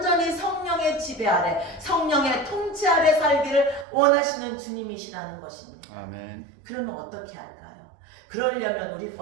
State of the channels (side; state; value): left; drops out; at 3.9 s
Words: 성령의 지배 아래, 성령의 통치 아래 살기를 원하시는 주님이시라는 것입니다. 아멘. 그러면 어떻게 할까요? 그러려면 우리